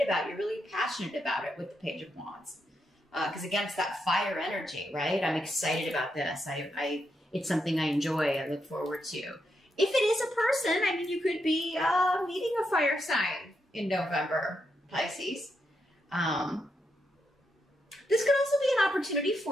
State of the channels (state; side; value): normal; both; correlation 0.82